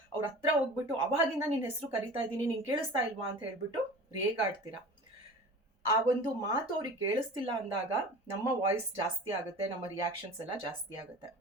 ಅವ್ರ ಹತ್ರ ಹೋಗ್ಬಿಟ್ಟು ಅವಾಗಿಂದ ನಿನ್ನ ಹೆಸರು ಕರಿತಾ ಇದ್ದೀನಿ, ನೀನು ಕೇಳಿಸ್ತಾ ಇಲ್ವಾ ಅಂತ ಹೇಳ್ಬಿಟ್ಟು ರೇಗಾಡ್ತೀರಾ. ಆ ಒಂದು ಮಾತು ಅವ್ರಿಗೆ ಕೇಳಿಸ್ತಿಲ್ಲ ಅಂದಾಗ ನಮ್ಮ ವಾಯ್ಸ್ ಜಾಸ್ತಿ ಆಗುತ್ತೆ, ನಮ್ಮ ರಿಯಾಕ್ಷನ್ಸ್ ಎಲ್ಲ ಜಾಸ್ತಿ ಆಗುತ್ತೆ.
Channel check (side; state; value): both; normal; correlation 0.38